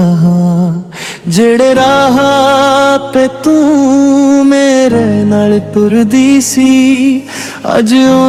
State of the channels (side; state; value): both; identical; correlation 1.00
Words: ਹਾਂ। ਜਿਹੜੇ ਰਾਹ ਪੇ ਤੂੰ ਮੇਰੇ ਨਾਲ ਤੁਰਦੀ ਸੀ, ਅੱਜ